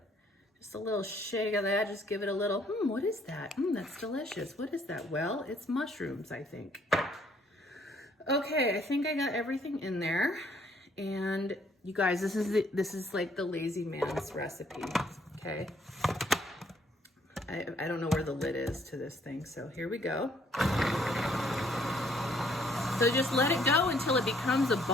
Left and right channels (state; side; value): normal; both; correlation 0.65